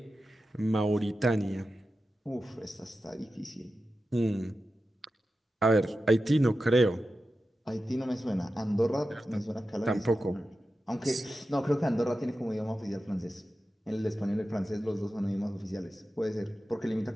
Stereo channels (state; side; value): normal; both; correlation 0.92